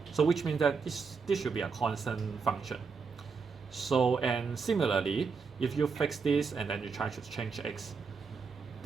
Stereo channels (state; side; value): quieter; left; 5.2 dB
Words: So which means that this should be a constant function. So, and similarly, if you fix this and then you try to change x,